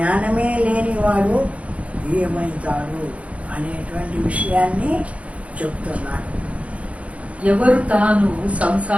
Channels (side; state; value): left; late; 0.064 ms